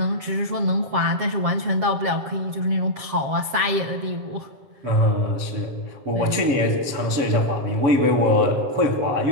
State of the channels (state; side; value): late; left; 7.4 ms